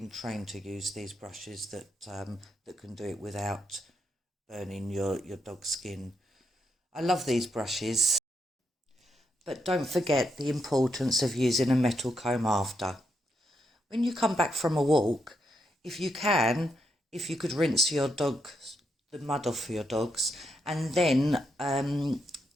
trained to use these brushes that can do it without burning your dog's skin. I love these brushes, but don't forget the importance of using a metal comb after. When you come back from a walk, if you could rinse the mud off your dogs, and then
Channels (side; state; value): both; normal; correlation 0.80